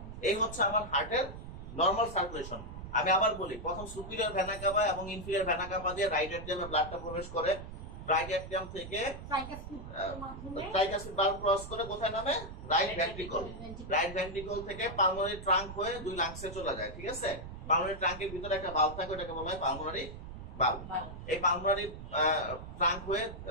এই হচ্ছে আমার হার্টের নরমাল সার্কুলেশন। আমি আবার বলি, প্রথম সুপিরিয়র ভেনা কাভা এবং ইনফিরিয়র ভেনা কাভা দিয়ে রাইট এট্রিয়ামে ব্লাডটা প্রবেশ করে, রাইট অ্যাট্রিয়াম থেকে মাধ্যমে ট্রাইকাসিড ভালভ ক্রস করে কোথায় নামে? Right ventricle. রাইট ভেন্ট্রিকল থেকে পালমোনারি ট্রাঙ্ক হয়ে দুই লাংসে চলে যায়, ঠিক আছে? পালমোনারি ট্রাঙ্কের ভিতরে একটা ভালভ থাকে, ওটাকে বলা হয় পালমোনারি ভালভ। এই পালমোনারি ট্রাঙ্ক হয়ে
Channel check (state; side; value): noise; right; rumble, 11 dB below the sound